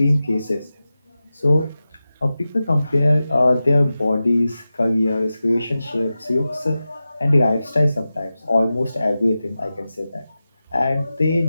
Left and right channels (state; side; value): inverted; both; correlation -0.94